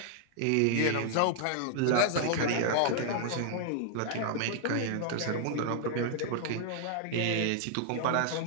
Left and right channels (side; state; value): both; different; correlation 0.00